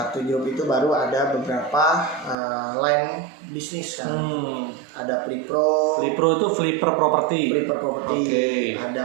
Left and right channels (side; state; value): left; drops out; at 2.4 s